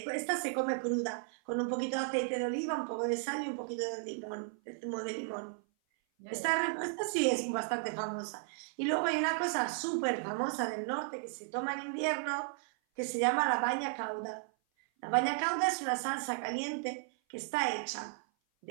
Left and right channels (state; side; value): silent; left; 55 dB below the other